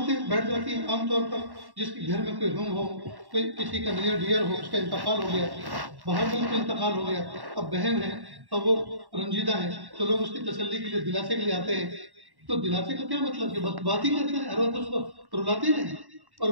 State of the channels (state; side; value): late; left; 1.1 ms